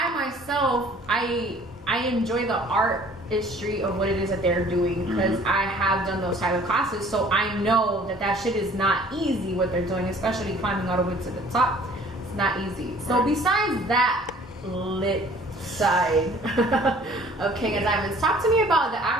myself, I enjoy the artistry of what it is that they're doing, because I have done those type of classes, so I know that shit is not easy what they're doing, especially climbing all the way to the top. It's not easy. So besides that lit side of King of Diamonds, talk to me about the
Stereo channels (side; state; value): both; normal; correlation 0.53